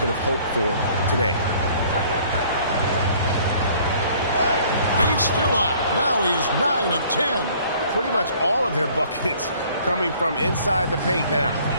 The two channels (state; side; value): inverted; both; correlation -0.56